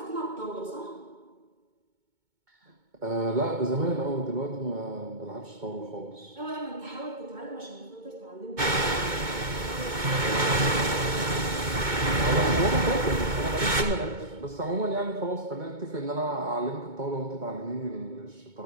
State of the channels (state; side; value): late; left; 2.2 ms